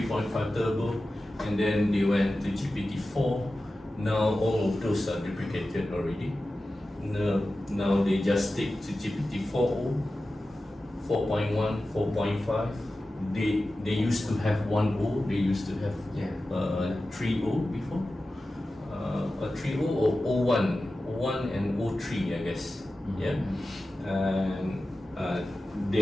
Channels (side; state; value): both; normal; correlation 0.94